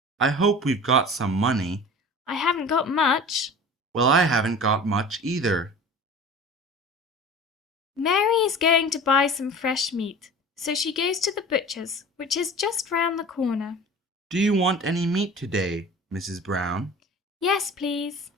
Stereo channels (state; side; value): normal; both; correlation 0.39